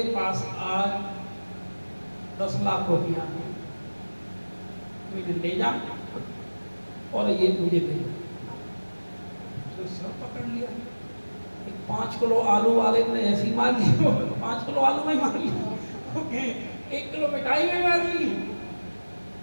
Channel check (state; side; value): inverted; both; correlation -1.00